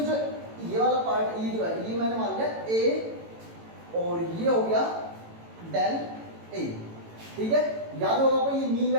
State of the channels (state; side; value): late; left; 18 ms